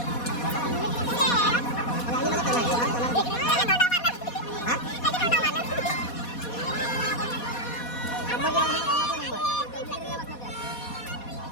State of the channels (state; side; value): late; right; 4.2 ms